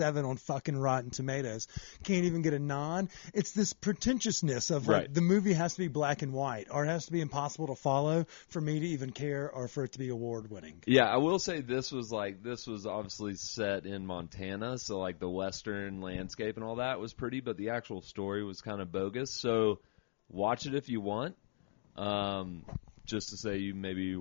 on fucking Rotten Tomatoes, can't even get a nod. It's this pretentiousness of like the movie has to be black and white, or it has to be impossible to follow for me to even care, or for it to be award-winning. Yeah, I will say this was obviously set in Montana, so like the western landscape and all that was pretty, but the actual story was kind of bogus. So watch it if you want. Just to say, you maybe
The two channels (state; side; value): silent; right; 53 dB below the other